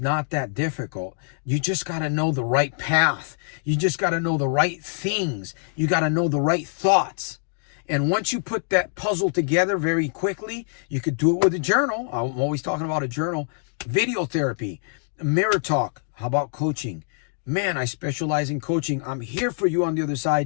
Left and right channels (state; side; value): silent; right; digital silence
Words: that difficult. You just got to know the right path. You just got to know the right things. You got to know the right thoughts. And once you put that puzzle together very quickly, you could do it with a journal. I'm always talking about a journal. Video therapy, mirror talk. How about coaching? Man, I specialize in coaching. I'm here for you on the other